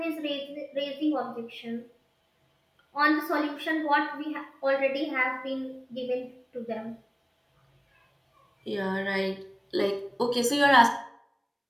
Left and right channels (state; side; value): identical; both; correlation 1.00